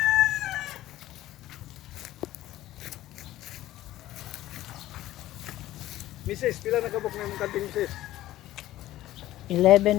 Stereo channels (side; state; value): right; quieter; 14.9 dB